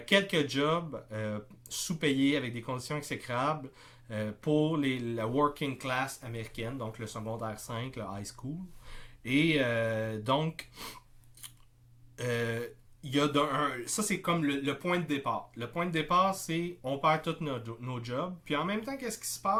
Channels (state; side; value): identical; both; correlation 1.00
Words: quelques jobs sous-payés avec des conditions exécrables pour la working class américaine, donc le secondaire 5, le high school. Et donc, il y a ça c'est comme le point de départ. Le point de départ, c'est on perd tous nos jobs. Puis en même temps, qu'est-ce qui se